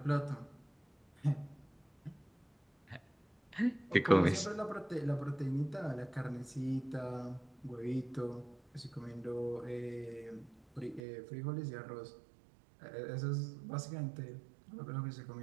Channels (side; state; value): left; drops out; at 11.0 s